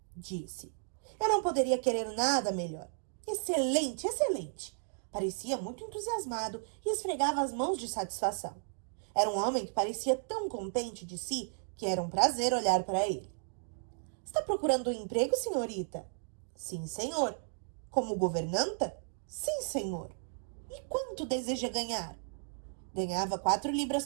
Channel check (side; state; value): left; silent; digital silence